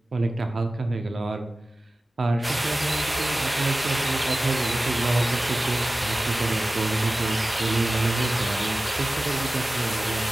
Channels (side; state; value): both; normal; correlation 0.96